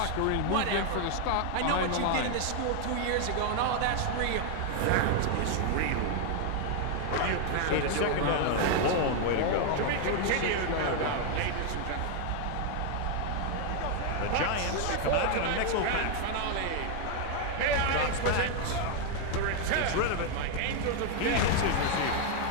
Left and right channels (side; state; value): both; different; correlation 0.00